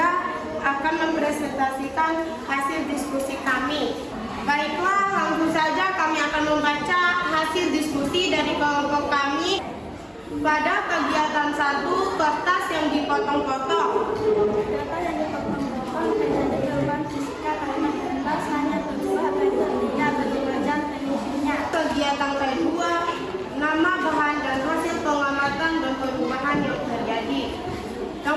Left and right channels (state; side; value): identical; both; correlation 1.00